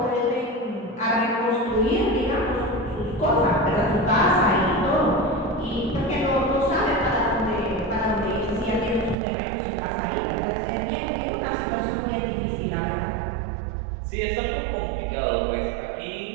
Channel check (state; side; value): drops out; left; at 9.2 s